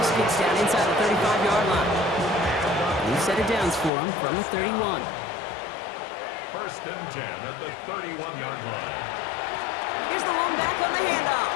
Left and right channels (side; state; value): right; drops out; at 3.9 s